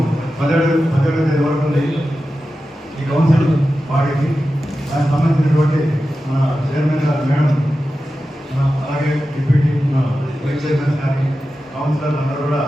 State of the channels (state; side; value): normal; both; correlation 0.92